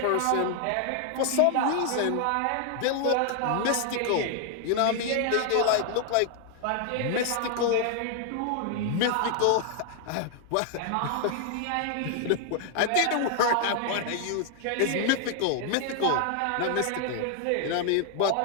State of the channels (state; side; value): different; both; correlation 0.00